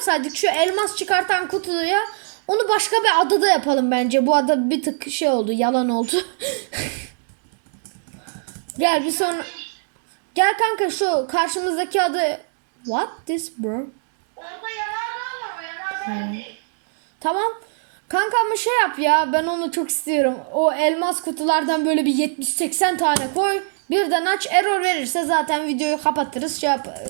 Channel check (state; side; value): silent; left; digital silence